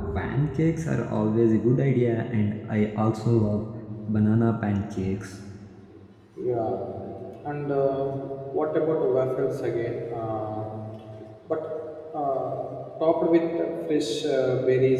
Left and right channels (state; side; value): identical; both; correlation 1.00